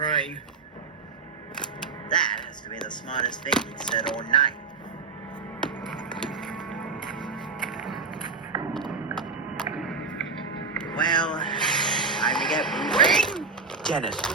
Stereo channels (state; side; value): quieter; left; 4.8 dB